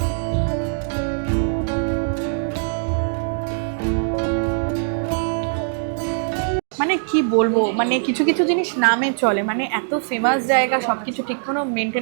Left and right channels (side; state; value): left; silent; digital silence